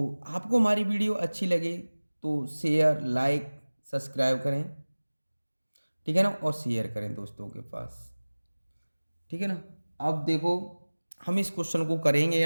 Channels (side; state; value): both; inverted; correlation -1.00